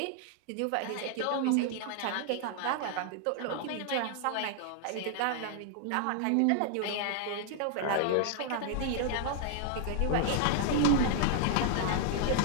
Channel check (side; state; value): both; different; correlation 0.00